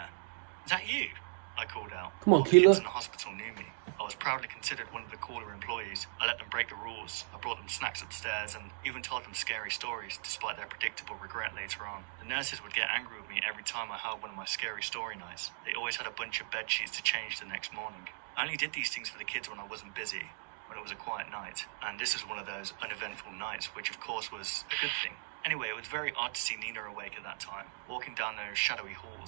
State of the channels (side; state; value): left; silent; digital silence